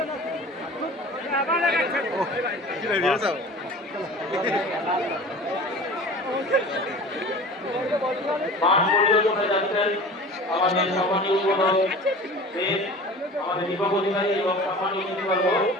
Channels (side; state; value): both; normal; correlation 0.39